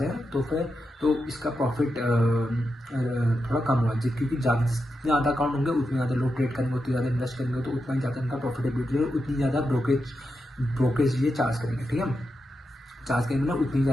हैं, तो इसका प्रॉफिट थोड़ा कम हुआ, क्योंकि जितने ज़्यादा अकाउंट होंगे उतने ज़्यादा लोग ट्रेड करेंगे, उतनी ज़्यादा इन्वेस्ट करेंगे, तो उतना ही ज़्यादा इनका प्रॉफिटेबिलिटी है, उतनी ज़्यादा ब्रोकेज ये चार्ज करेंगे, ठीक है। चार्ज करेंगे ना, उतनी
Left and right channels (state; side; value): normal; both; correlation 0.87